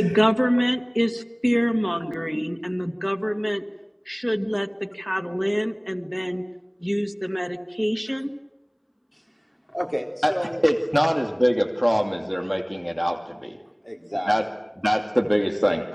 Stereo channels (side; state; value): both; identical; correlation 1.00